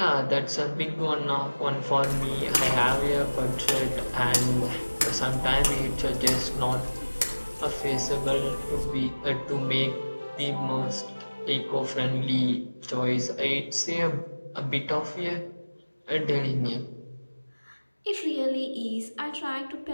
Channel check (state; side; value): inverted; both; correlation -1.00